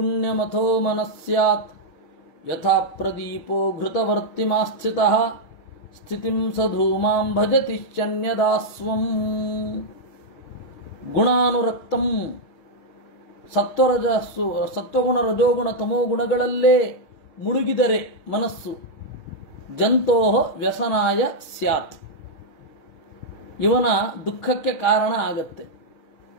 ಮನಸ್ಸ್ಯಾತ್ ಯಥಾ ಪ್ರದೀಪೋ ಘೃತವರ್ತಿಮಾಸ್ಥಿತಃ ಸ್ಥಿತಿಂ ಸಧೂಮಾಂ ಭಜತಿಶ್ಚನ್ಯದಾಸ್ವಂ. ಗುಣಾನುರಕ್ತಂ, ಸತ್ವಗುಣ ರಜೋಗುಣ ತಮೋ ಗುಣಗಳಲ್ಲೇ ಮುಳುಗಿದರೆ ಮನಸ್ಸು ಜಂತೋ ವ್ಯಸನಾಯ ಸ್ಯಾತ್, ಇವನ ದುಃಖಕ್ಕೆ ಕಾರಣ ಆಗತ್ತೆ.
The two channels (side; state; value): right; late; 6.4 ms